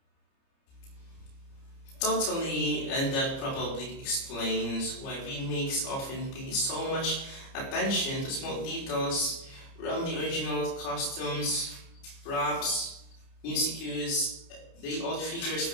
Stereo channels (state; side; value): late; right; 29 ms